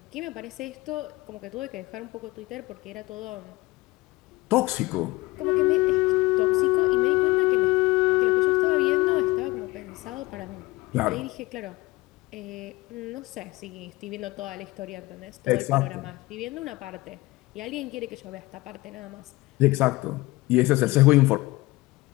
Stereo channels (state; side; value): quieter; right; 20.5 dB